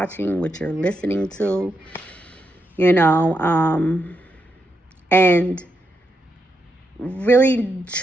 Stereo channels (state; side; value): normal; both; correlation 0.83